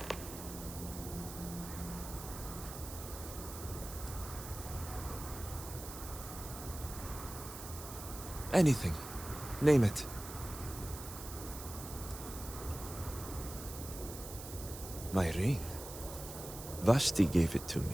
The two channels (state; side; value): noise; right; hiss, 11 dB below the sound